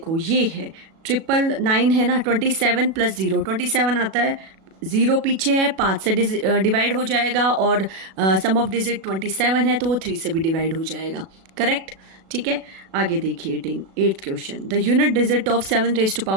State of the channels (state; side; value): late; left; 37 ms